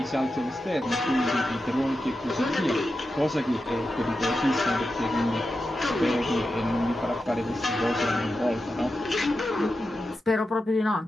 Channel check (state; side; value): normal; both; correlation 0.90